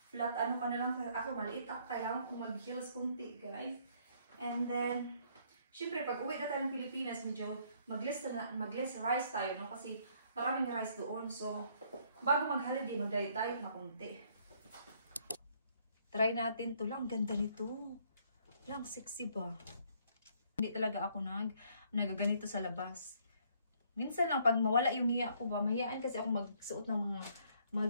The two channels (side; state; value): both; inverted; correlation -0.66